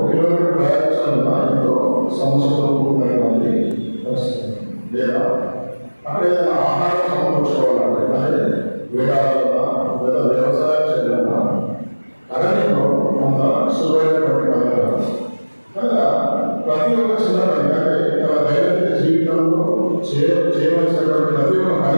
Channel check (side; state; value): both; inverted; correlation -1.00